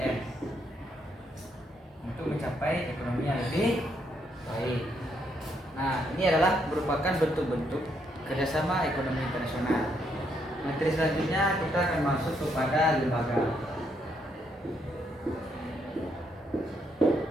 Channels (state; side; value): normal; both; correlation 0.75